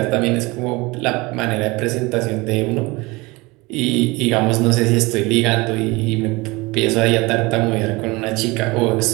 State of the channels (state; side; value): quieter; left; 23.6 dB